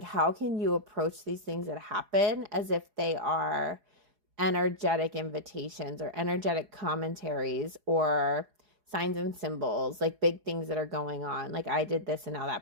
how can you approach these things that happen as if they are energetic invitations or energetic commentaries or signs and symbols, like big things that are going on? Like, I did this and now that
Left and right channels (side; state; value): left; late; 4.8 ms